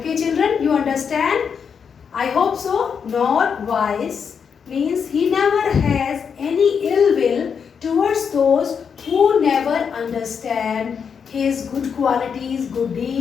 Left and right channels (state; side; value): quieter; right; 6.7 dB